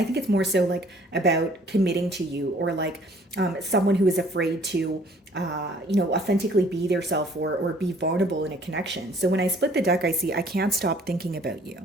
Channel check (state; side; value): normal; both; correlation 0.57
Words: think it's more so like about committing to you, or like someone who is afraid to, authentically be their self, or be vulnerable in a connection. So when I split the deck, I see I can't stop thinking about